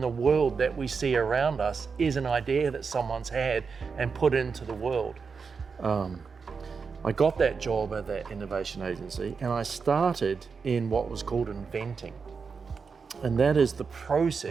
world that we see around us is an idea that someone's had and put into the world. I got that job at that innovation agency and I started in what was called inventing. And that is the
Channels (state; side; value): quieter; left; 5.3 dB